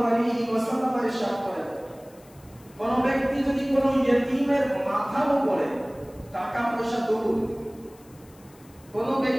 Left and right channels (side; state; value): left; noise; hiss, 27 dB below the sound